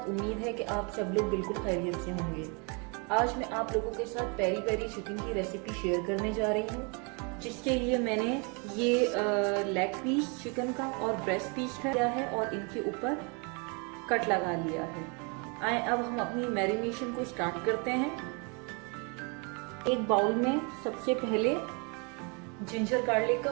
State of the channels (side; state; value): left; quieter; 33.5 dB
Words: उम्मीद है कि आप सब लोग बिल्कुल खैरियत से होंगे। आज मैं आप लोगों के साथ पेरी पेरी चिकन की रेसिपी शेयर करने जा रही हूँ, जिसके लिए मैंने ये लेग पीस चिकन का और ब्रेस्ट पीस लिया है और इनके ऊपर कट लगा लिया है। आए अब हम अपनी मैरिनेशन को स्टार्ट करते हैं। एक बाउल में सबसे पहले जिंजर गार्लिक का